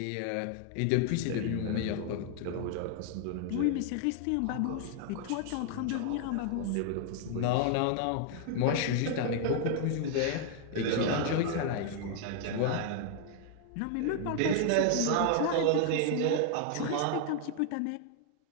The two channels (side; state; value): both; different; correlation 0.00